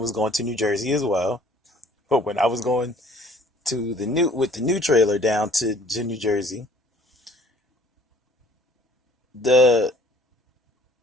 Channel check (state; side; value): normal; both; correlation 0.55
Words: was going to New Jersey as well. But when I was going to the new trailer down to New Jersey, the